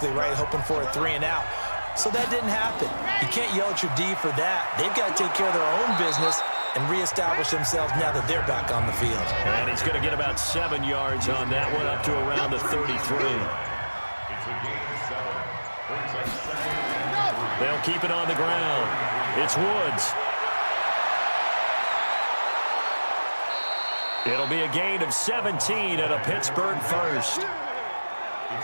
right? Hoping for a 3 and out. So that didn't happen. You can't yell at your D for that. They've got to take care of their own business and reestablish themselves now that they're back on the field. And he's going to get about 7 yards on that one, up to around the 33. It's a gain of 7. Brings up 2nd. They'll keep it on the ground. It's Woods. It'll be a gain of 17 and a Pittsburgh 1st. It's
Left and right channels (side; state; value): both; inverted; correlation -1.00